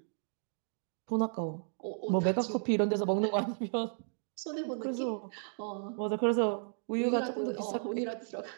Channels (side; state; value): left; silent; 55 dB below the other